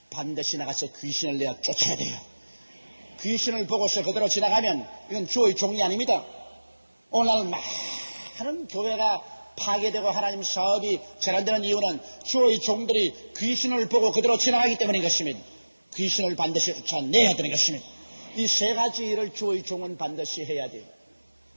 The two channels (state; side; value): inverted; both; correlation -1.00